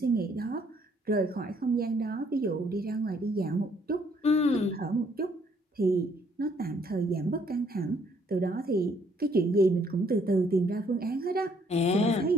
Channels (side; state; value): both; normal; correlation 0.66